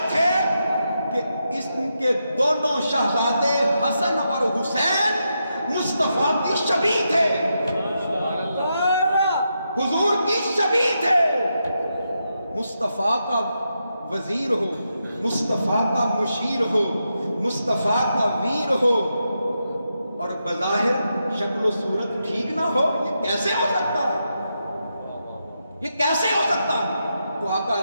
تھے کہ اس کے دونوں شہزادے حسن اور حسین مصطفیٰ کی شبیہ تھے، حضور کی شبیہ تھے۔ مصطفیٰ کا وزیر ہو، مصطفیٰ کا مشیر ہو، مصطفیٰ کا ویر ہو، اور بظاہر شکل و صورت ٹھیک نہ ہو؟ یہ کیسے ہو سکتا ہے؟ یہ کیسے ہو سکتا ہے؟ تو آقا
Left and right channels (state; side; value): inverted; both; correlation -0.85